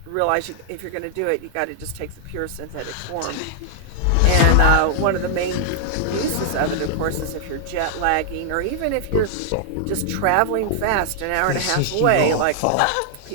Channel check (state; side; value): different; both; correlation -0.01